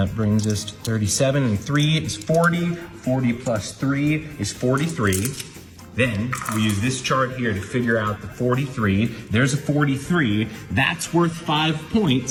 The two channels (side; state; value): both; identical; correlation 1.00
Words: brings us to 37, and 3 is 40. 40 plus 3 is 43. Then we use this chart here to figure out the 43. There's a 43. That's worth 5